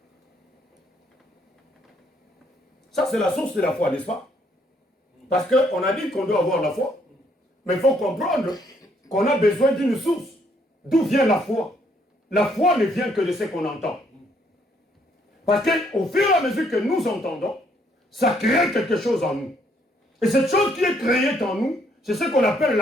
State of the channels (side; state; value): both; normal; correlation 0.69